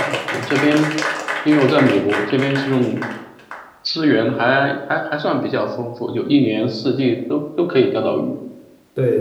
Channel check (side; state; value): both; identical; correlation 1.00